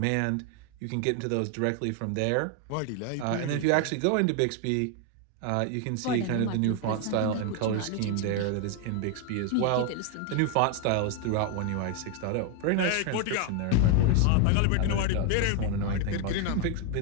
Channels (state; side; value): different; both; correlation 0.01